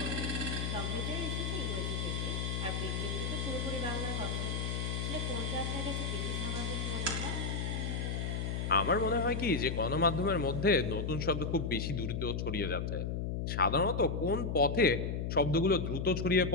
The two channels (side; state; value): left; noise; hum, 1 dB below the sound